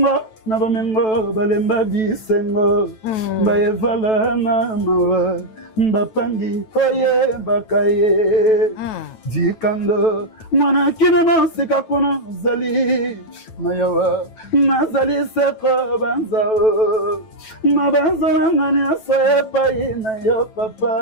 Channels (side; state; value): right; late; 9.1 ms